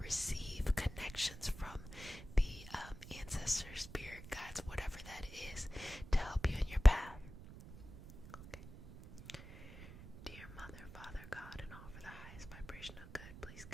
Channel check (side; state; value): right; noise; rumble, 14 dB below the sound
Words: receive connections from the ancestors, spirit guides, whatever that is, to help you in your path. Okay. Dear Mother, Father, God, and all for the highest vibration of good, please